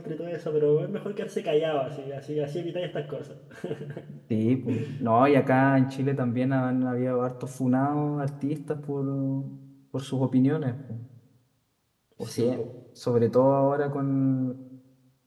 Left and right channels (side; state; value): both; identical; correlation 1.00